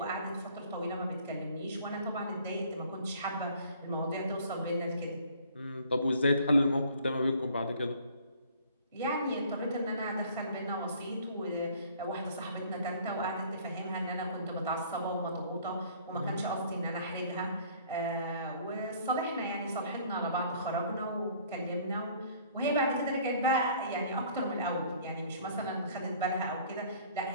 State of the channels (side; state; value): both; inverted; correlation -0.55